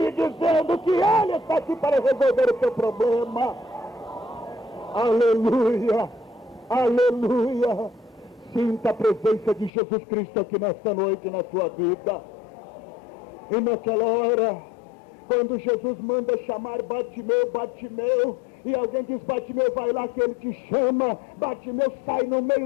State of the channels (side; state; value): right; drops out; at 9.7 s